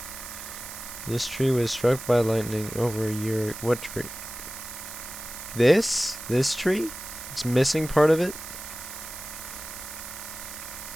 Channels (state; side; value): noise; right; hiss, 11 dB below the sound